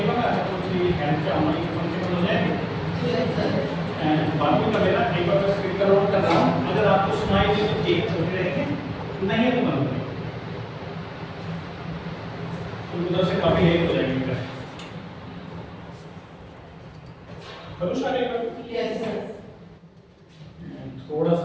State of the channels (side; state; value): both; identical; correlation 1.00